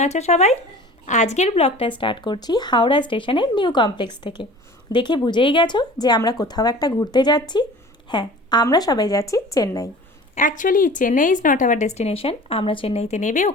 আছো সবাই? আজকের ব্লগটা স্টার্ট করছি হাওড়া স্টেশনের নিউ কমপ্লেক্স থেকে। দেখে বুঝেই গেছো যে আমরা কোথাও একটা ঘুরতে যাচ্ছি। হ্যাঁ, আমরা সবাই যাচ্ছি Chennai. Actually Chennai is not our destination. আমরা চেন্নাইতে নেবে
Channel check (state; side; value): normal; both; correlation 0.42